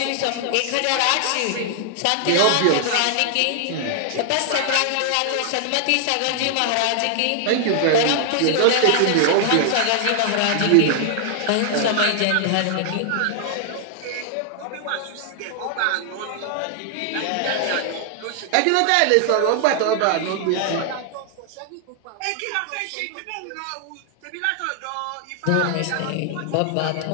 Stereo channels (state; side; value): different; both; correlation 0.00